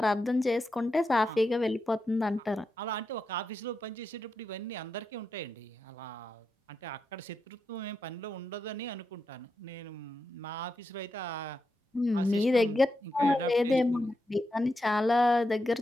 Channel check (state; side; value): normal; both; correlation 0.86